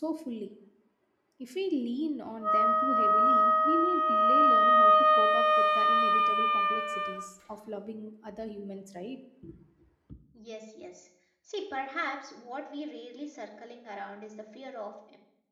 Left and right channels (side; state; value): both; identical; correlation 1.00